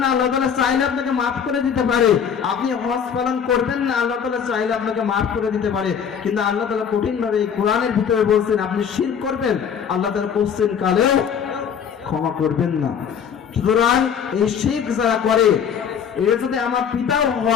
না, আল্লাহ তাআলা চাইলে আপনাকে মাফ করে দিতে পারে। আপনি হজ পালন করবেন না, আল্লাহ তাআলা চাইলে আপনাকে মাফ করে দিতে পারে। কিন্তু আল্লাহ তাআলা কঠিন ভাবে এই কোরআনের ভিতরে বলছেন আপনি শিরক করবেন, আল্লাহ তাআলা কোশ্চেন কালেও ক্ষমা করবেন না। সুতরাং এই শিরক যারা করে, এর যদি আমার পিতাও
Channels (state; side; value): quieter; right; 7.6 dB